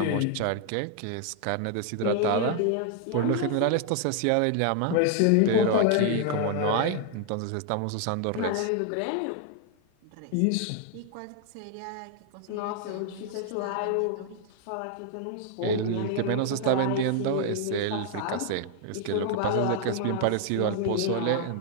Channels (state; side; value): different; both; correlation 0.00